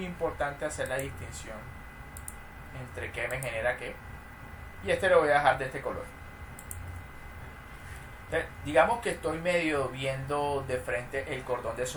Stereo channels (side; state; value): both; identical; correlation 1.00